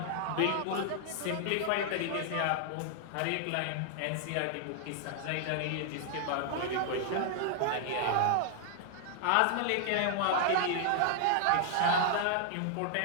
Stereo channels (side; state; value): both; different; correlation -0.01